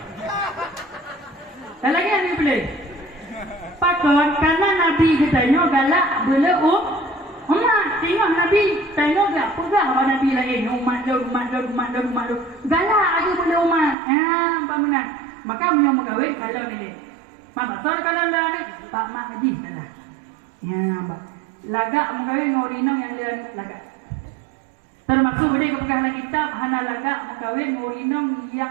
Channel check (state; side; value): drops out; left; at 14.0 s